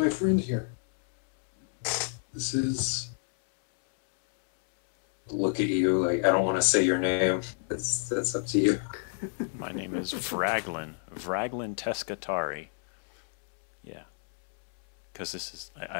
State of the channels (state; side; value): silent; right; 59 dB below the other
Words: friend here. This is. Look at you, like I don't want to say your name. That's up to you. My name is Vraglin Teskatari. Yeah, because this is